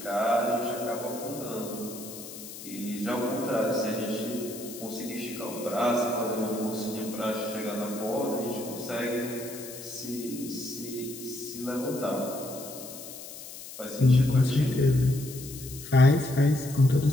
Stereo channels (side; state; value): left; noise; hiss, 13 dB below the sound